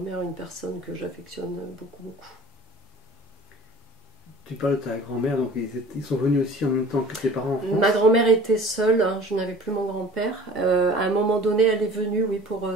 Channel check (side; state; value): both; normal; correlation 0.44